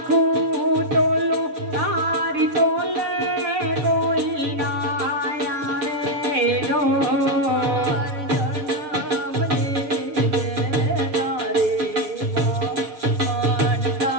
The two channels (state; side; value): late; left; 7.1 ms